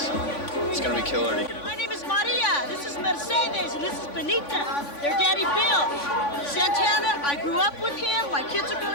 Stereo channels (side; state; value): right; late; 3.5 ms